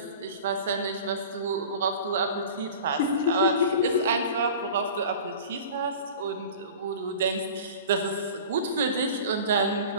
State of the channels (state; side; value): inverted; both; correlation -0.39